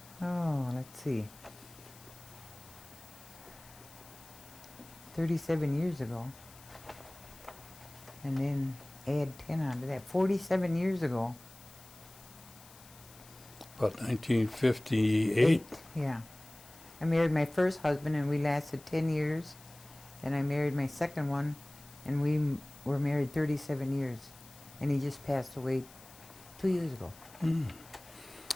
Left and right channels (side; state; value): left; noise; hiss, 21 dB below the sound